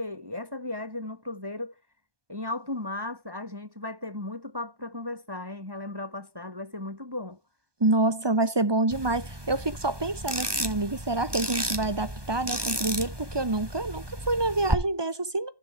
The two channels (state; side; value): late; left; 1.2 ms